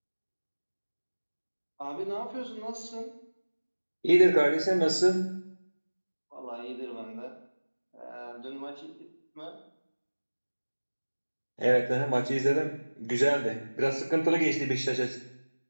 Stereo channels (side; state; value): both; inverted; correlation -1.00